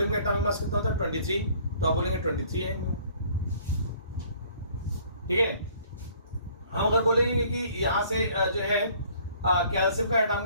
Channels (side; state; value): both; inverted; correlation -0.57